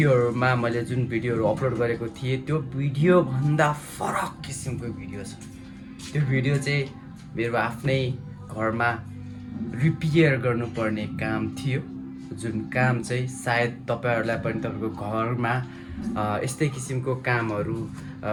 मैले जुन भिडियोहरु अपलोड गरेको थिएँ त्यो भिडियो भन्दा फरक किसिमको भिडियो छ। त्यो भिडियो चाहिँ मेरो आफ्नै घरमा रिपेयर गर्नुपर्ने काम थियो, जुन काम चाहिँ सायद तपाईहरुलाई पनि तपाईको घरमा यस्तै किसिमको कामहरु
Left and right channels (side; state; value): both; identical; correlation 1.00